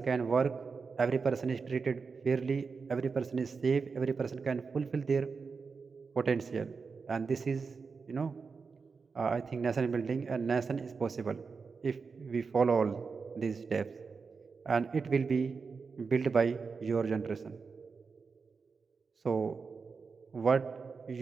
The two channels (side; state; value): left; quieter; 5.0 dB